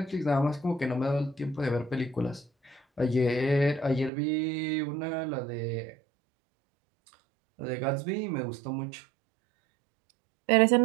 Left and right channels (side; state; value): left; drops out; at 4.1 s